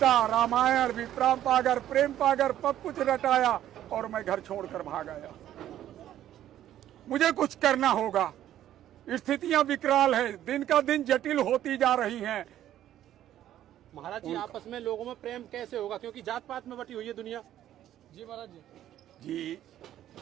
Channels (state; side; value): quieter; left; 12.1 dB